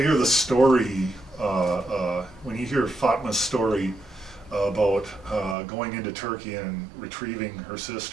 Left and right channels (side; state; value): left; drops out; at 5.6 s